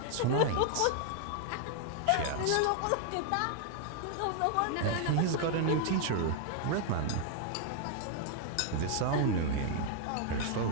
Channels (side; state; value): both; different; correlation 0.00